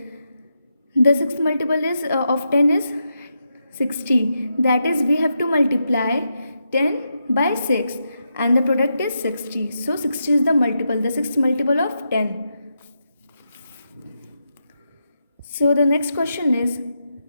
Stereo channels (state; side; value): inverted; both; correlation -0.85